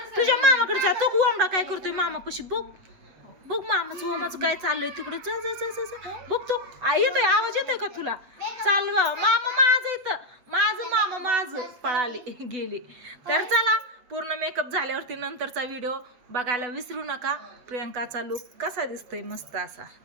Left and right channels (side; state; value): left; late; 8.0 ms